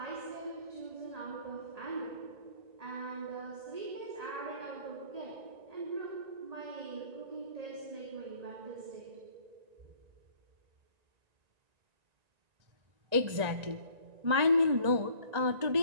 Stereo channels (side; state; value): left; late; 1.9 ms